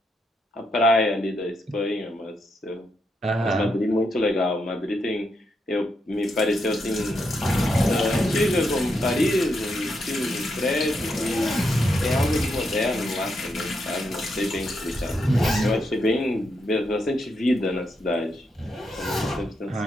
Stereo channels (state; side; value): normal; both; correlation 0.81